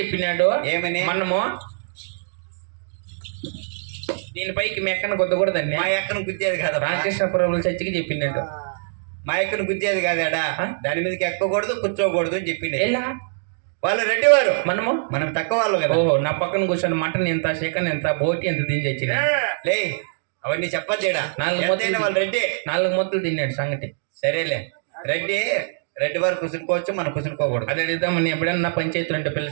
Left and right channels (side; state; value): left; silent; digital silence